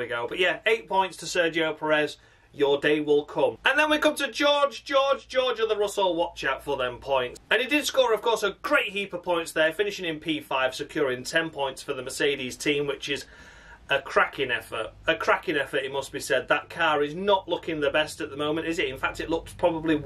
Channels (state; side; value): identical; both; correlation 1.00